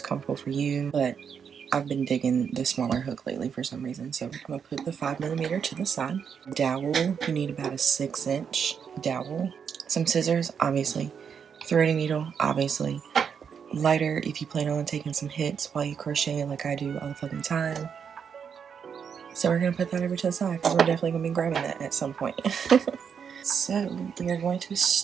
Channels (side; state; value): left; quieter; 7.0 dB